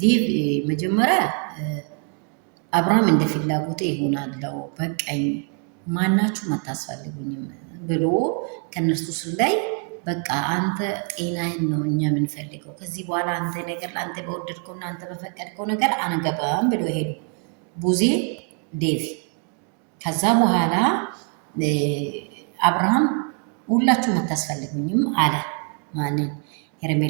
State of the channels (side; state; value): left; quieter; 39.2 dB